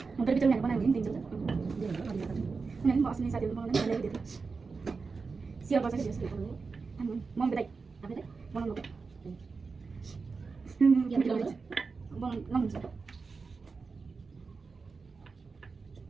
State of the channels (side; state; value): left; quieter; 4.6 dB